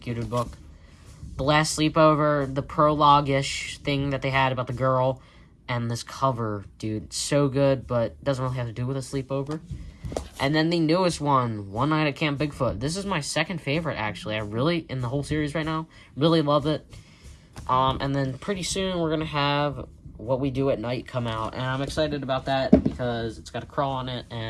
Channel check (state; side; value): identical; both; correlation 1.00